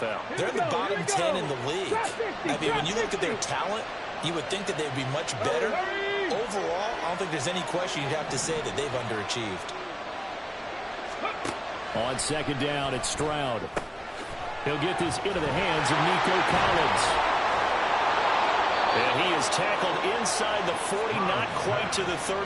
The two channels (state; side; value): identical; both; correlation 1.00